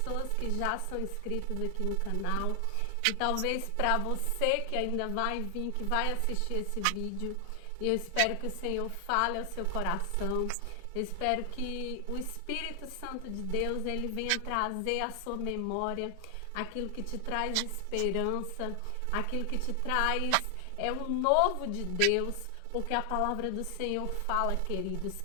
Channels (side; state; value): both; different; correlation 0.00